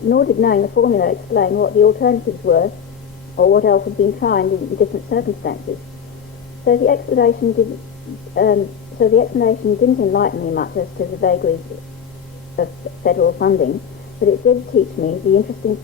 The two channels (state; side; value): quieter; right; 7.6 dB